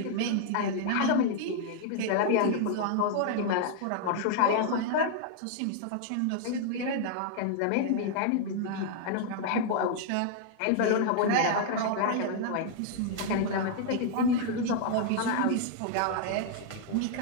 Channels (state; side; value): different; both; correlation -0.01